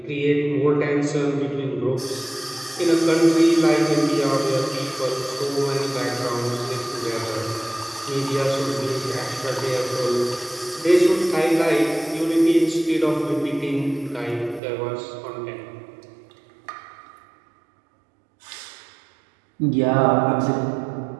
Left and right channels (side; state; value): left; drops out; at 14.6 s